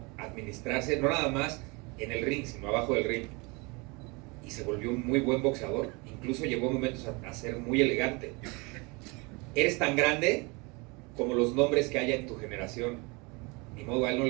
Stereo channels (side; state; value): left; quieter; 27.9 dB